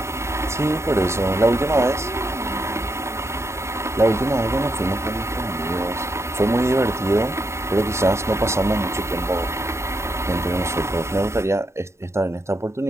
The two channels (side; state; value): left; late; 0.13 ms